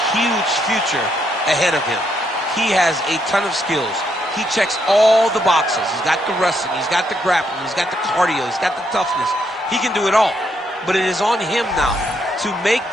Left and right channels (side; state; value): both; normal; correlation 0.76